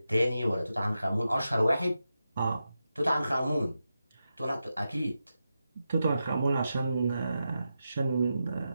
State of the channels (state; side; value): inverted; both; correlation -0.89